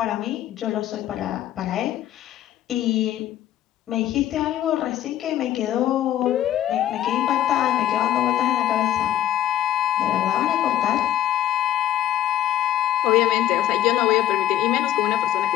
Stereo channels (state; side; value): quieter; right; 12.2 dB